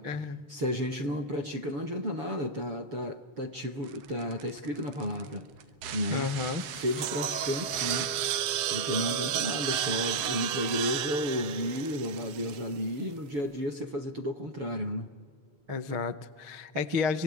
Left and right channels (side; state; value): left; late; 7.7 ms